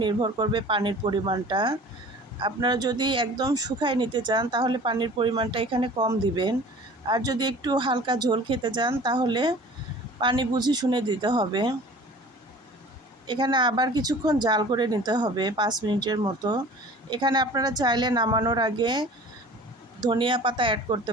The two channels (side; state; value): both; normal; correlation 0.44